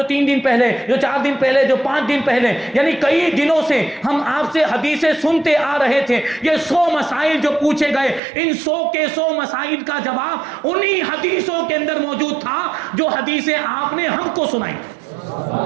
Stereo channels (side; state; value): left; drops out; at 8.2 s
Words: 3 دن پہلے، جو 4 دن پہلے، جو 5 دن پہلے. یعنی کئی دنوں سے ہم آپ سے حدیثیں سنتے آ رہے تھے. یہ 100 مسائل جو پوچھے گئے، ان 100 کے 100 مسائل کا جواب انہی حدیثوں کے اندر موجود تھا جو حدیثیں آپ نے ہم کو سنائی.